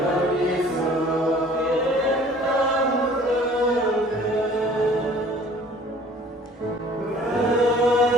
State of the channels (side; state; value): both; normal; correlation 0.52